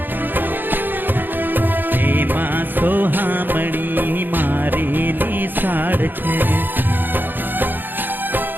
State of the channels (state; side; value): late; left; 0.092 ms